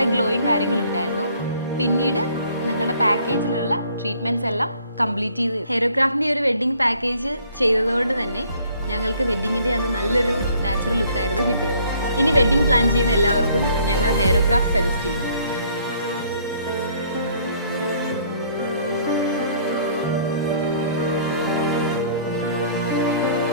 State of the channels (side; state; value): both; inverted; correlation -0.60